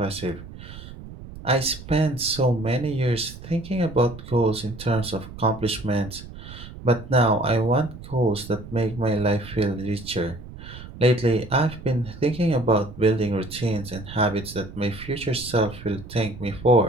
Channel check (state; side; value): noise; right; rumble, 14 dB below the sound